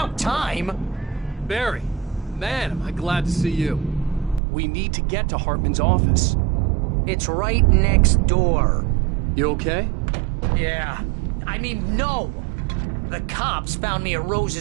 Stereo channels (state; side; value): drops out; left; at 4.4 s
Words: time! Barry, man, am I glad to see you. We need to get to Hartman's office. It's right next door. You okay? Yeah. I mean, no! The cops found me at